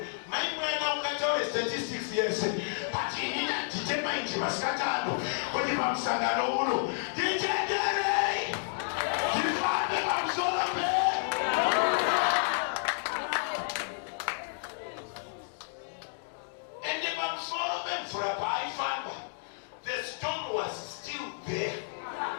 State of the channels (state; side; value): silent; right; digital silence